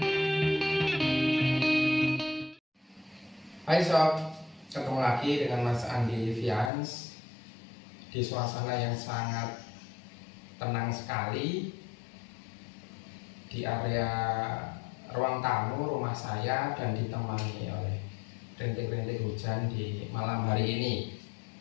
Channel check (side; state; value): right; drops out; at 6.7 s